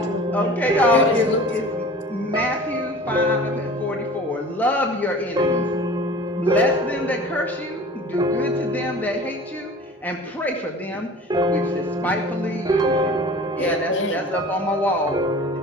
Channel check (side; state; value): both; normal; correlation 0.42